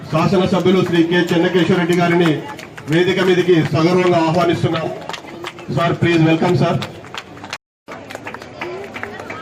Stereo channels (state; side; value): identical; both; correlation 1.00